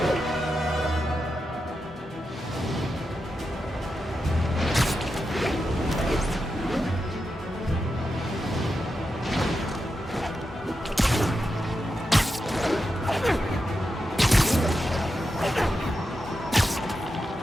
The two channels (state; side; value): normal; both; correlation 0.88